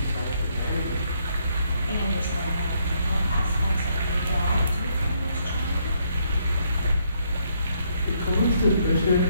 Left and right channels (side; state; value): both; inverted; correlation -0.72